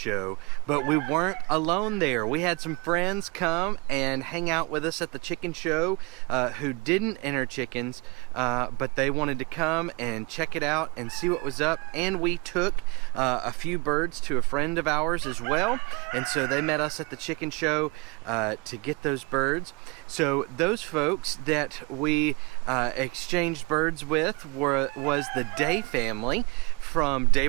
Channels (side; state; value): left; quieter; 28.1 dB